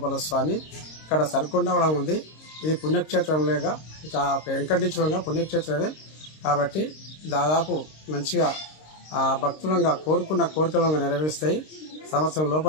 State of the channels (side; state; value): right; late; 26 ms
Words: స్వామి ఇక్కడ సరికొండ కూడా ఉంది. ఇది పుణ్యక్షేత్రం లేక వెంకటేశ్వరంగా పుణ్యక్షేత్రమే కాబట్టి దాదాపు మంచిగా భక్తులంగా కోరుకున్న కోరికలంగా నెరవేరుస్తాయి. సంవత్సరం